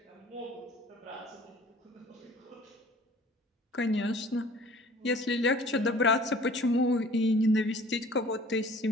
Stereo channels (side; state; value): both; normal; correlation 0.50